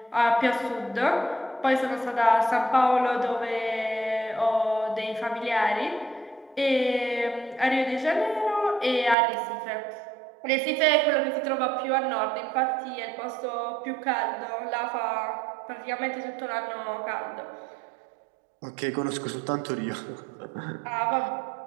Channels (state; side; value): drops out; left; at 9.2 s